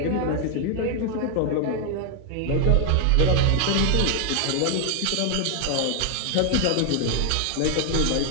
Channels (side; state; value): both; different; correlation 0.00